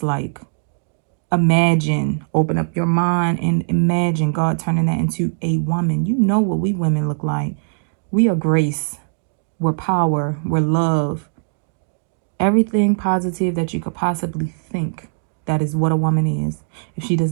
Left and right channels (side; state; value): left; silent; digital silence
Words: like. Imagine, open up your mind and imagine God turning that into a woman. You know what we women look like. We are grace. We're power. We're love. Everything positive that you could possibly think. That is what a woman is. If she does